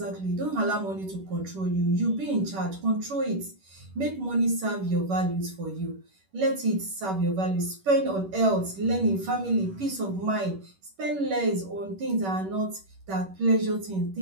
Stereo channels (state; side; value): late; left; 11 ms